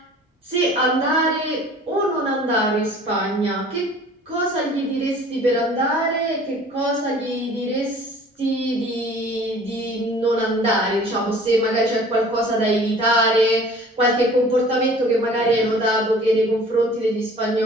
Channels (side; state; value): both; normal; correlation 0.48